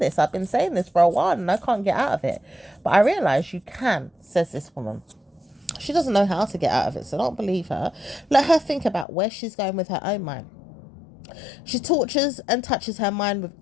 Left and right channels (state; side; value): drops out; right; at 9.1 s